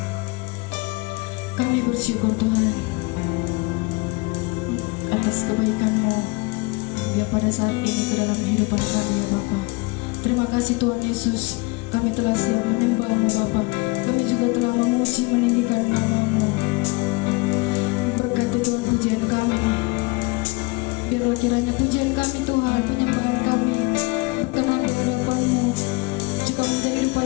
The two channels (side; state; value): right; quieter; 25.9 dB